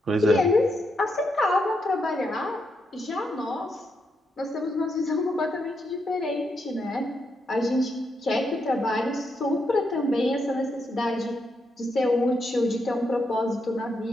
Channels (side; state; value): both; normal; correlation 0.81